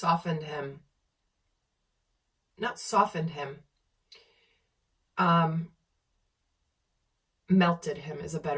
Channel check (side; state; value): both; identical; correlation 1.00